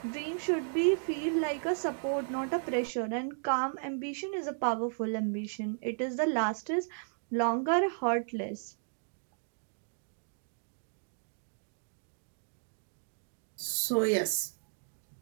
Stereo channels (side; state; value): left; silent; digital silence